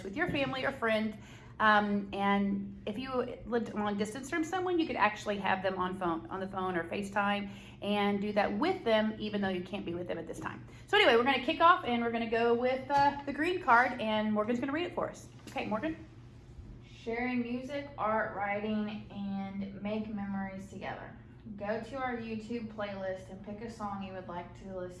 with your family or friend. And if you lived long distance from someone, you could actually have them on the phone or FaceTime and do that with them, even though you can't be with them at this time. So anyway, we're going to kick off, and we're going to go with the green card, and Morgan's going to read it for us. Okay, Morgan. Sharing music, art, writing, and make memories together. Go to our YouTube playlist and pick a song you would like to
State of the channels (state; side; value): identical; both; correlation 1.00